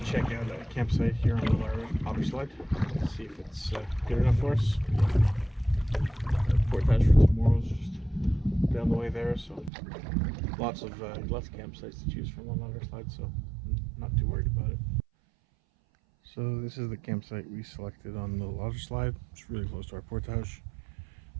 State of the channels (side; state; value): left; drops out; at 9.7 s